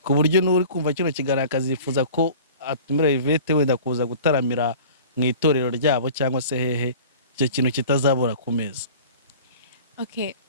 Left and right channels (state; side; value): inverted; both; correlation -0.42